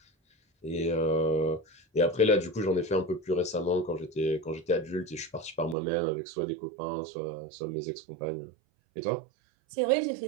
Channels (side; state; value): left; drops out; at 5.8 s